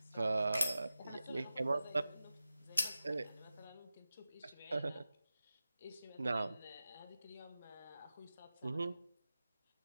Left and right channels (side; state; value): both; inverted; correlation -0.94